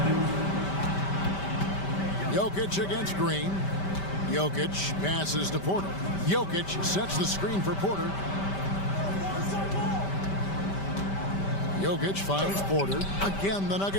Jokic against Green. Jokic passes to Porter. Jokic sets the screen for Porter. Jokic finds Porter. Again, the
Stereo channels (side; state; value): right; late; 5.1 ms